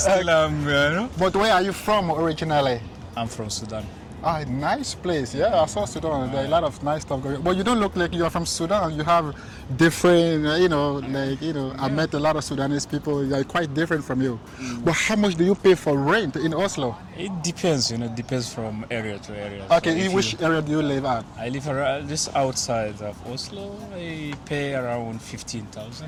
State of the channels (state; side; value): identical; both; correlation 1.00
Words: you know. But where are you from originally? I'm from Sudan. Ah, nice place. Yeah, I saw Sudan. There are a lot of nice stuff going on. But you don't look like you're from Sudan. You have different, you know, I met a lot of Sudanese people. They're quite different from you. But how much do you pay for rent in Oslo? It depends, you know, it depends from area to area. Okay, so in which area do you live at? I live around, just outside of Oslo. I pay around